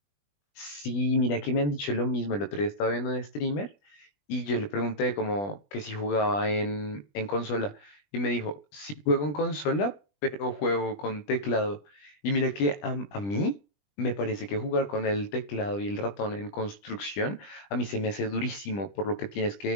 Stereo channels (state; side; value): late; right; 20 ms